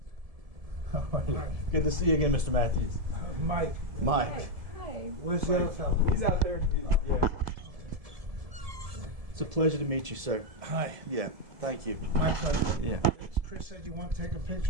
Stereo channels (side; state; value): left; late; 1.7 ms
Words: Good to see you again, Mr. Matthews. Mike, Mike. Hi. where's the other fellow? He's out there. Yeah. It's a pleasure to meet you, sir. Hi, Yeah, thank you. my pleasure. Yeah. Chris said you want to take a